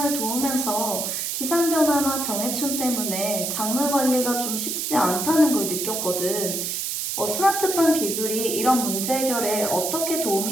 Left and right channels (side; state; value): right; noise; hiss, 2 dB below the sound